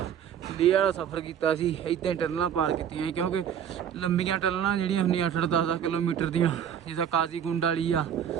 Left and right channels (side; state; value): left; quieter; 8.9 dB